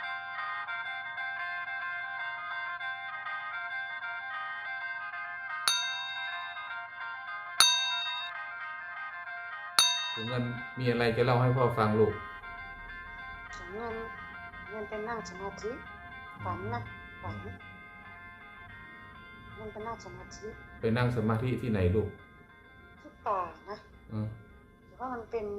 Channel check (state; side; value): identical; both; correlation 1.00